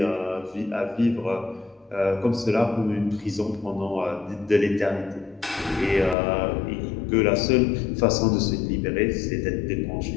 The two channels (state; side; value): drops out; right; at 6.2 s